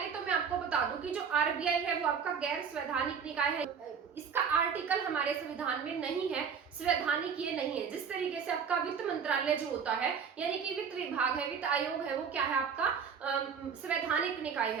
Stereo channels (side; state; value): left; quieter; 6.6 dB